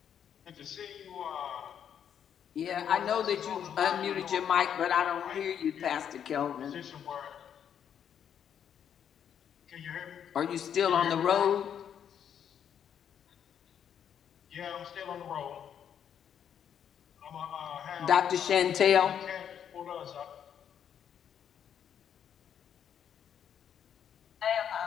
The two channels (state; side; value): quieter; right; 8.7 dB